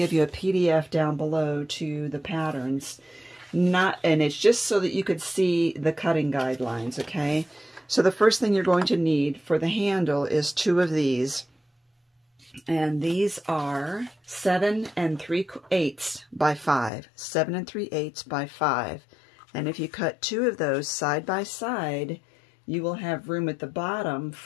you a PDF down below to the patterns. And it's just so that you could see the cutting guidelines, okay? So the first thing you're going to need for the handle is two of these. And these are 7 3/8 by 5. 7 3/8 by 5. And if you cut two of those side by side, you will have room at the bottom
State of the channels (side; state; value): right; drops out; at 16.9 s